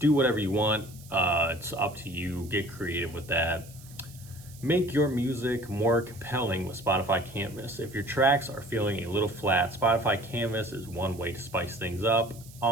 whatever you want. It's up to you. Get creative with that. Make your music more compelling with Spotify Canvas. If your tracks are feeling a little flat, Spotify Canvas is one way to spice things up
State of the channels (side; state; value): right; noise; hiss, 21 dB below the sound